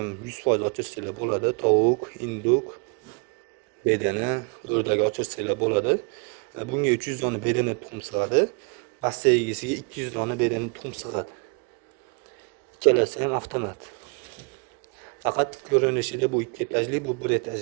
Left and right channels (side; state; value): left; quieter; 35.0 dB